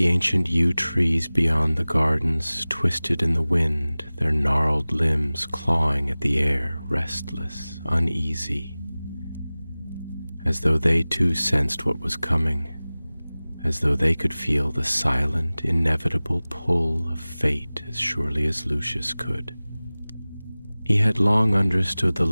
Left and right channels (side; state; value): both; inverted; correlation -0.99